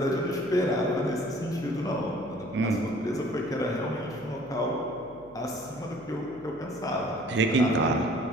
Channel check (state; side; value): noise; left; hum, 24 dB below the sound